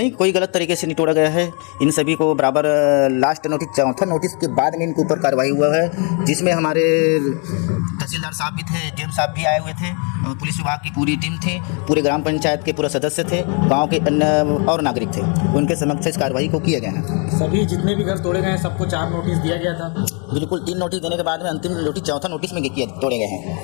कोई गलत तरीके से नहीं तोड़ा गया है। इन सभी को बराबर लास्ट नोटिस, चौथा नोटिस के बाद में इनके ऊपर कार्रवाई हुआ है, जिसमें हमारे तहसीलदार साहब भी थे, डीएम साहब भी आए हुए थे, और पुलिस विभाग की पूरी टीम थी, पूरे ग्राम पंचायत के पूरे सदस्य थे, गांव के अन्य और नागरिक थे। उनके समक्ष इस कार्रवाई को किया गया है। सभी जितने भी घर तोड़े गए हैं सबको 4 नोटिस दिया गया था? बिल्कुल, 3 नोटिस देने के बाद में अंतिम नोटिस चौथा नोटिस में तोड़े गए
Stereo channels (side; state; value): right; quieter; 36.4 dB